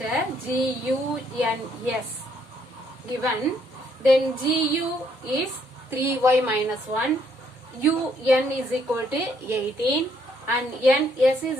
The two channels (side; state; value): both; normal; correlation 0.70